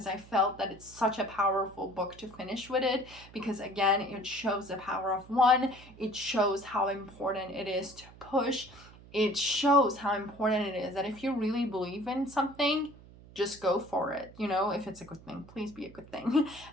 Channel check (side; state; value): right; noise; hum, 21 dB below the sound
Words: I felt that it's such a powerful book to finish with it, because again, it shows the power of one. It shows how important it is to push. It shows how important it is that if you really believe in something, just go for it. You know, if it's a good thing, please be a good thing.